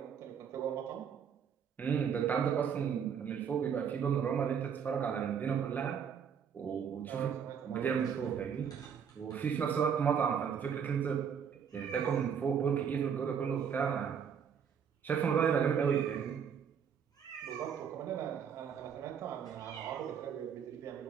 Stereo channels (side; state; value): left; quieter; 7.5 dB